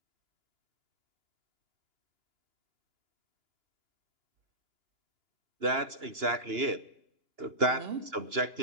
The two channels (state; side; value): late; left; 2.9 ms